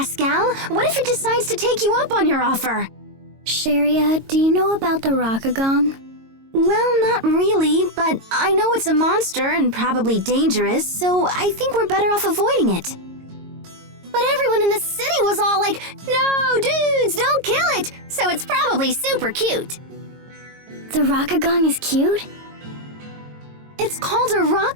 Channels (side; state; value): left; late; 22 ms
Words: What if it decides to take you up on your offer? Sharia, do you know about the Rockagong? Well, not really, but I know it's a monster and probably dangerous, so I think we're better off avoiding it. But everyone in the city was all like, no, dudes, don't kill it! So it's probably super cute. The Rockagong is cute? It's called a